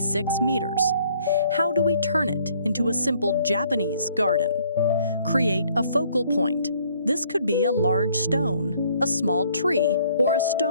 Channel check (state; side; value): inverted; both; correlation -0.63